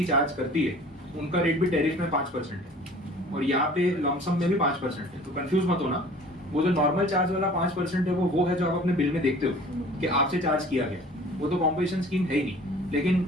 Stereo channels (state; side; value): normal; both; correlation 0.47